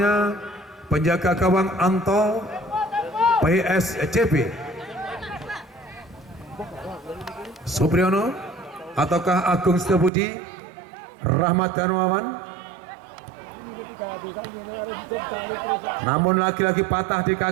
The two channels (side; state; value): left; drops out; at 10.1 s